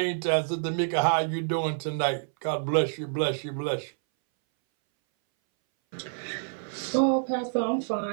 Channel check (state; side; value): silent; left; 60 dB below the other